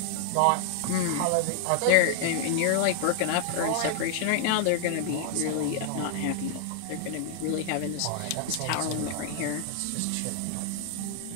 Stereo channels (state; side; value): different; both; correlation 0.00